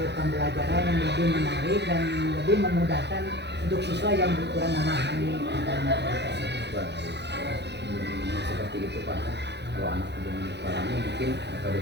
pembelajaran yang lebih menarik dan lebih memudahkan untuk siswa yang kurang memahami tentang materi tersebut. Seperti itu pak. Kalau anak belum memahami, mungkin metode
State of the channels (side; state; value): left; late; 0.50 ms